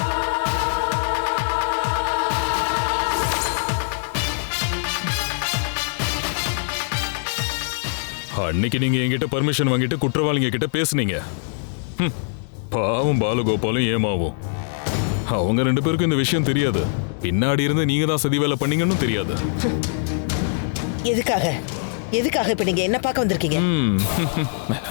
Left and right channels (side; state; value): right; silent; digital silence